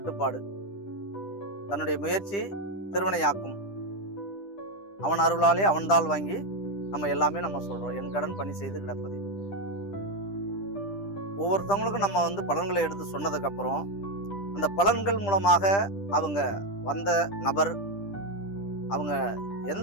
தன்னுடைய முயற்சி திருவினையாக்கும், அவன் அருளாலே அவன்தால் வாங்கி நம்ம எல்லாமே நம்ம சொல்றோம். என் கடன் பணி செய்து கிடப்பது. ஒவ்வொருத்தவங்களுக்கும் நம்ம பலன்களை எடுத்து சொன்னதுக்கு அப்புறம் அந்த பலன்கள் மூலமாக அவங்க வந்த நபர் அவங்க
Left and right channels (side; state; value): right; late; 10 ms